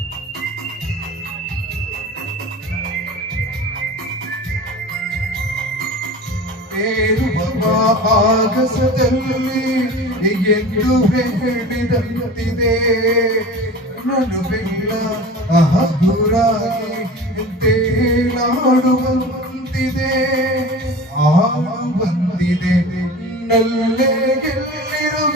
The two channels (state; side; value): normal; both; correlation 0.36